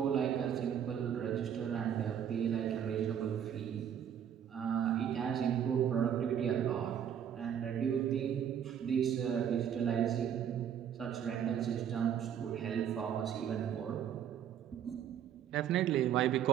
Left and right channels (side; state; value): left; quieter; 9.1 dB